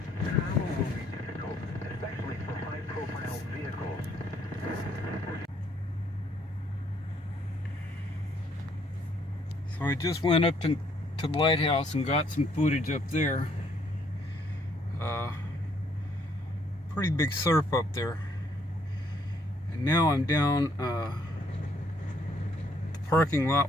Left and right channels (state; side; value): normal; both; correlation 0.68